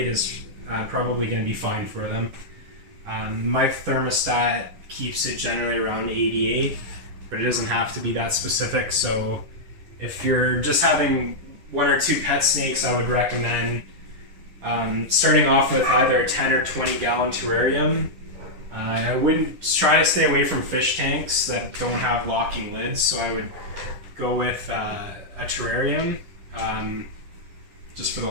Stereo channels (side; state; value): left; late; 11 ms